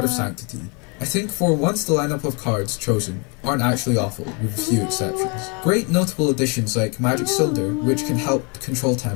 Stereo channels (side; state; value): right; quieter; 33.3 dB